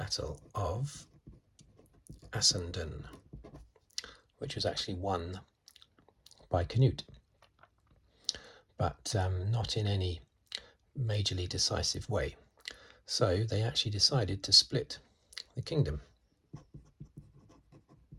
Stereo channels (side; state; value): both; identical; correlation 1.00